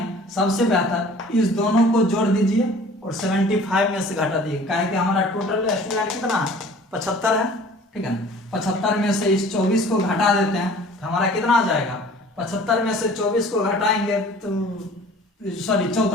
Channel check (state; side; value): normal; both; correlation 0.48